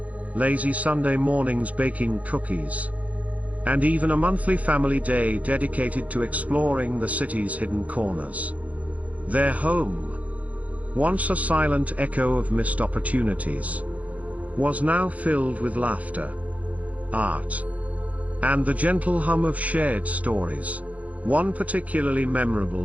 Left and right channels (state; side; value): late; left; 0.069 ms